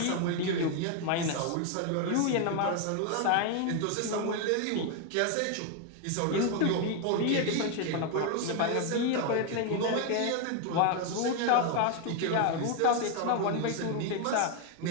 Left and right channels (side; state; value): both; different; correlation 0.01